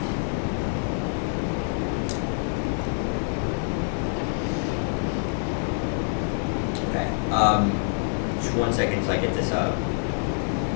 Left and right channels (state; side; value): silent; right; digital silence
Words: Okay. Just 1 second so I get this up.